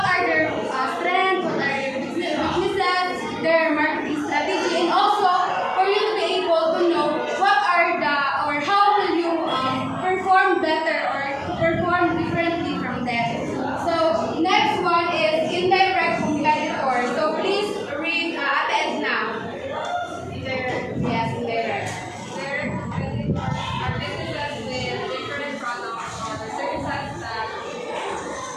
are their strengths, what are their weaknesses, their marketing strategy, and also for you to be able to know what are the or how will you perform better or perform differently from them. So next one is indirect competitor. So please read Ate Edna. Yes, indirect. Direct competitors are businesses with different products or services that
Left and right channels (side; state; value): both; identical; correlation 1.00